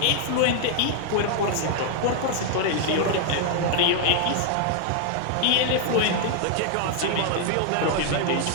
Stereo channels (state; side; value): different; both; correlation 0.00